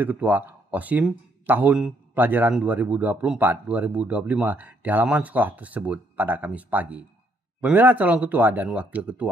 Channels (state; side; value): normal; both; correlation 0.70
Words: ketua OSIM tahun pelajaran 2024-2025 di halaman sekolah tersebut pada Kamis pagi. Pemilihan calon ketua dan wakil